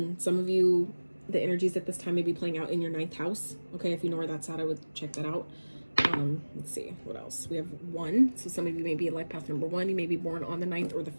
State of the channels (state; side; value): inverted; both; correlation -1.00